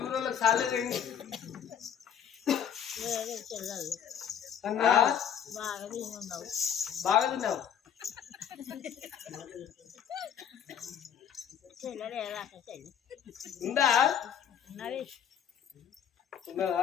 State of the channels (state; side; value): quieter; right; 8.7 dB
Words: ఊళ్ళో సాలేదండి అన్నా బాగా తిన్నావు ఉందా